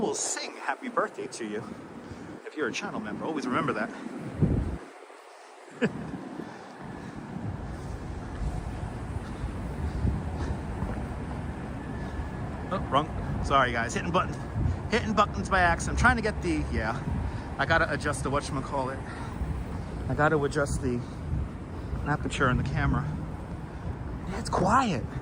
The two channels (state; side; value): identical; both; correlation 1.00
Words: sing happy birthday to you. If you're a channel member, always remember that. Oh, wrong. Sorry guys, hitting buttons by accident. I'm trying to get the, I gotta adjust the whatchamacallit. I gotta adjust the aperture in the camera. Yeah, it's quiet.